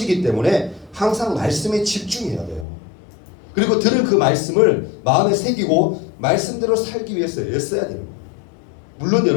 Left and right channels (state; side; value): drops out; right; at 2.7 s